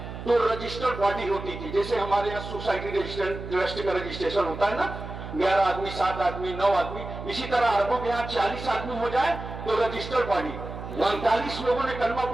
تو رجسٹرڈ باڈی ہوتی تھی. جیسے ہمارے یہاں سوسائٹی ٹرسٹ کا رجسٹریشن ہوتا ہے نا، 11 آدمی 7 آدمی 9 آدمی، اسی طرح عربوں کے یہاں 40 آدمی ہو جائے تو رجسٹرڈ باڈی. 45 لوگوں نے کلمہ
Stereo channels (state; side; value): noise; right; hum, 10 dB below the sound